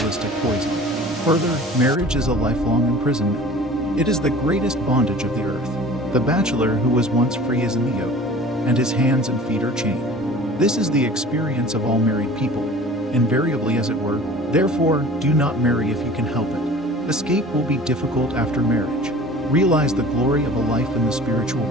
poison. Further, marriage is a lifelong imprisonment. It is the greatest bondage of the earth. The bachelor who was once free is in the yoke, and his hands and feet are chained. This is the experience of all married people, invariably as it were. Therefore, do not marry if you can help it. Escape will be difficult after marriage. Realize the glory of a life in the spiritual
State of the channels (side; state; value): both; normal; correlation 0.43